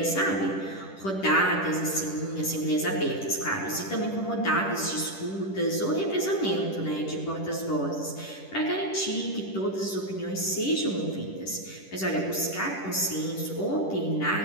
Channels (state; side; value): late; right; 10 ms